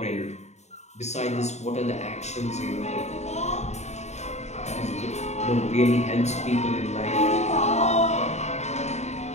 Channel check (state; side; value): late; right; 0.32 ms